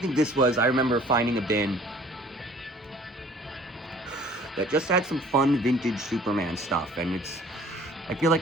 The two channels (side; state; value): both; normal; correlation 0.52